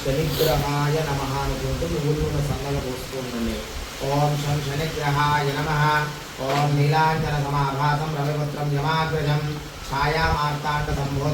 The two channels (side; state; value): both; identical; correlation 1.00